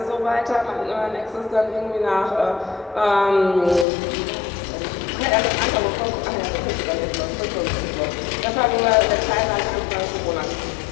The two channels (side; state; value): right; drops out; at 3.9 s